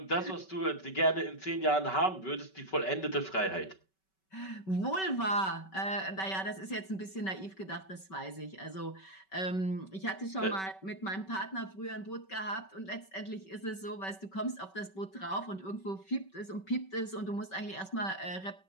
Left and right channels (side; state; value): right; late; 5.3 ms